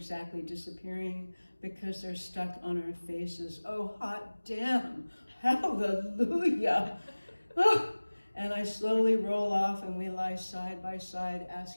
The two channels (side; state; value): both; inverted; correlation -1.00